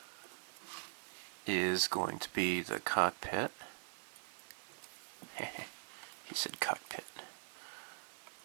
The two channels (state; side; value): silent; left; digital silence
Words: is going to be the cockpit. He said cockpit.